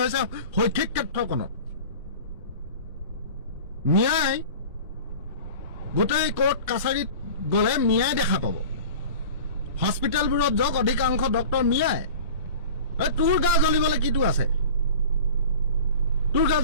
হৈছে শৈক্ষিক ক্ষেত্ৰখনত। মিয়াই গোটেই কোৰ্ট কাছাৰীত গ'লে মিয়াই দেখা পাব। হস্পিটেলবোৰত যাওক, অধিকাংশ ডক্টৰ মিয়াই। তোৰ গা জ্বলিবলৈ কিটো আছে? তোৰ গা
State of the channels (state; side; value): inverted; both; correlation -0.39